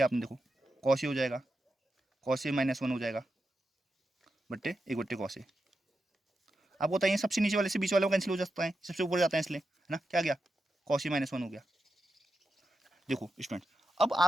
आपने, देखो कॉस ए हो जाएगा, कॉस ए -1 हो जाएगा बट्टे एक बट्टे कॉस ए। आपको बताइए सबसे नीचे वाले से बीच वाले को कैंसिल हो जाता है, सबसे ऊपर जाता है इसलिए, है ना, क्या गया, कॉस ए -1 हो गया। देखो स्टूडेंट, अब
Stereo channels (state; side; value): normal; both; correlation 0.88